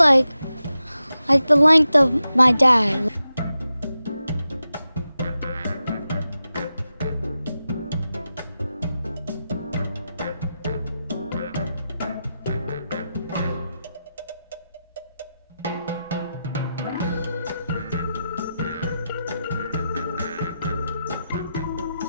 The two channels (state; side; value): inverted; both; correlation -0.90